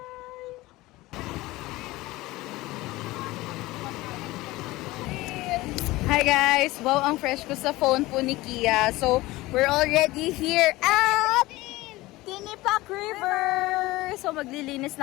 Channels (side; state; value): right; quieter; 19.3 dB